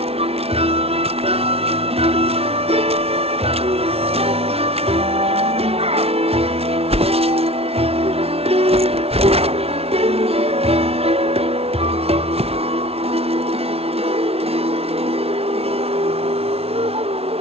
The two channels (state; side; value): late; left; 0.29 ms